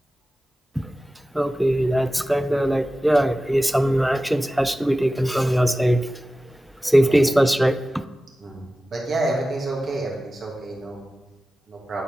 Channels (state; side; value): normal; both; correlation 0.95